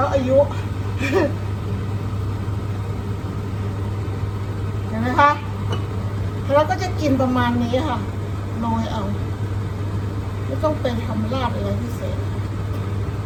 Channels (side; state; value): both; identical; correlation 1.00